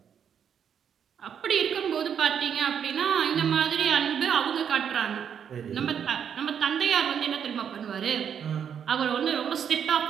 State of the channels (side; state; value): left; quieter; 8.1 dB